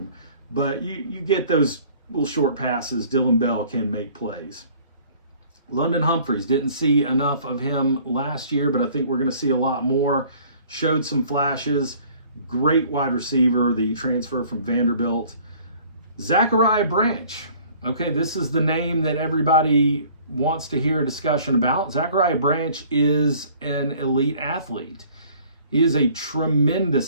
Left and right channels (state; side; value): inverted; both; correlation -0.54